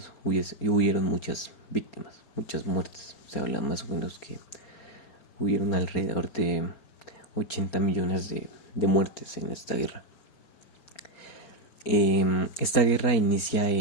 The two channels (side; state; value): right; late; 4.4 ms